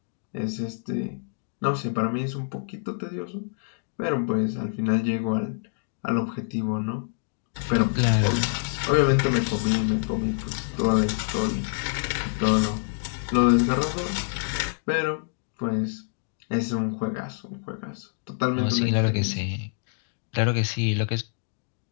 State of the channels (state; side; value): silent; right; digital silence